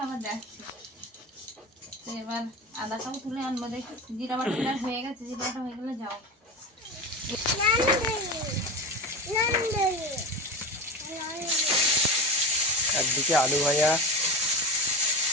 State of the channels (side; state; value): both; normal; correlation 0.25